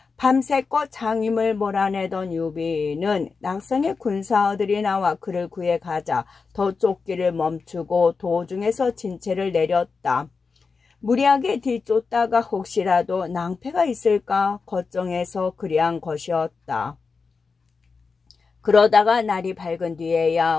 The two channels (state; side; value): quieter; right; 4.8 dB